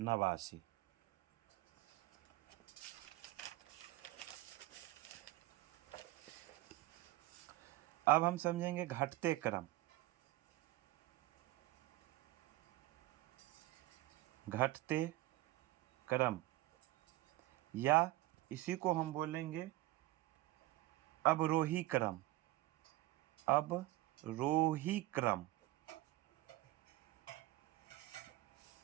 अब हम समझेंगे घटते क्रम। घटते क्रम या इसी को हम बोलेंगे अवरोही क्रम। अवरोही क्रम,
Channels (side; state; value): left; quieter; 17.9 dB